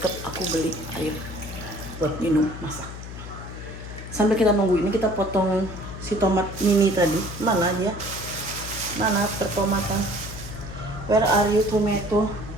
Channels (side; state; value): left; noise; hum, 11 dB below the sound